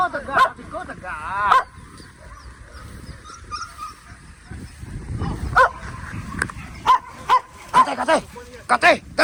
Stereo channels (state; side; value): identical; both; correlation 1.00